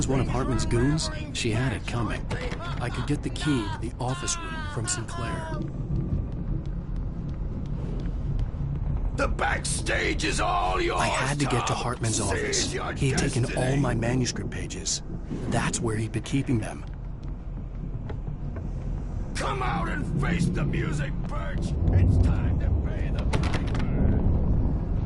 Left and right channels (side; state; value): both; identical; correlation 1.00